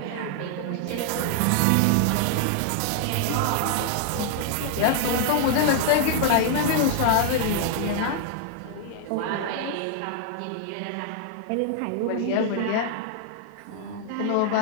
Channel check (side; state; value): both; different; correlation 0.00